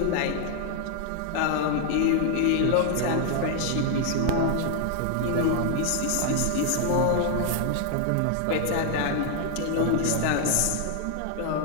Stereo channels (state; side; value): different; both; correlation 0.00